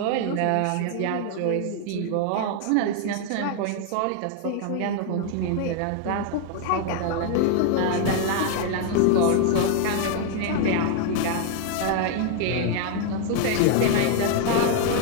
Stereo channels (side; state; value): both; different; correlation 0.00